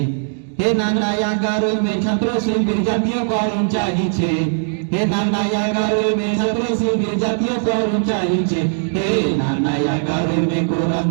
হে নানা 11ই মে ছাত্র শিবির জাতীয়করণ চাইছে হে নানা 11ই মে ছাত্র শিবির জাতীয়করণ চাইছে হে নানা 11ই মে কোরআন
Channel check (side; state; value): left; silent; digital silence